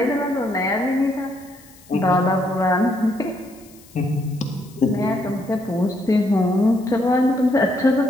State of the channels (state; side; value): noise; left; hiss, 25 dB below the sound